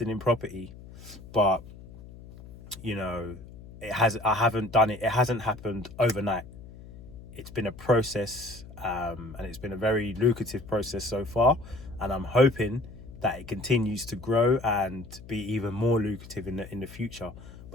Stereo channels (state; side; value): noise; left; hum, 17 dB below the sound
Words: in property, but it hasn't happened overnight. It's been a process, and it's been a very lucrative process so far, and I'm hoping that it continues to grow and be even more lucrative in the future.